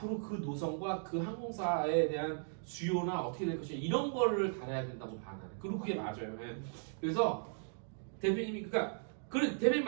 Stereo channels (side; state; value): left; silent; digital silence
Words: 그 노선과 그 항공사에 대한 수요나 어떻게 될 것이냐 이런 거를 다뤄야 된다고 봐 나는. 그리고 그게 맞아요. 그래서 대표님이 그래 대표님